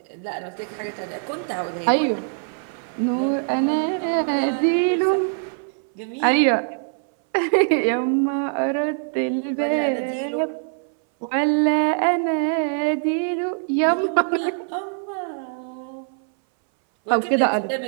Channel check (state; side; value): silent; left; 61 dB below the other